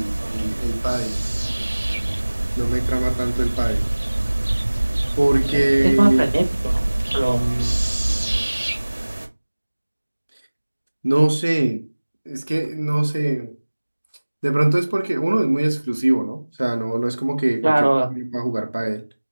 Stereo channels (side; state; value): both; inverted; correlation -1.00